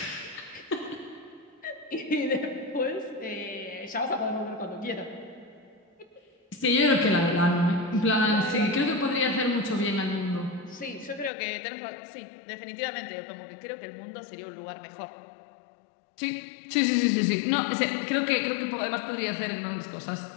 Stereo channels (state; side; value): drops out; right; at 11.3 s